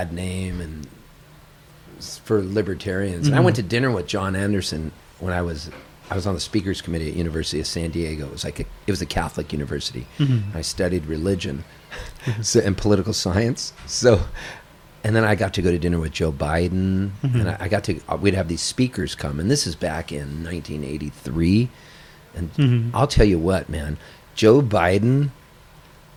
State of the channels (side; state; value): both; identical; correlation 1.00